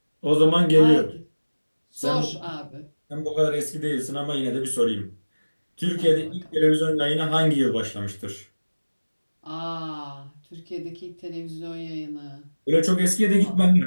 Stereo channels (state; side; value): inverted; both; correlation -1.00